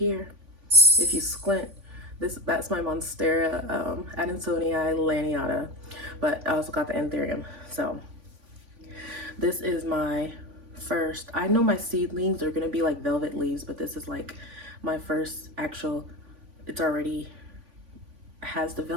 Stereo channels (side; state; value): left; late; 3.5 ms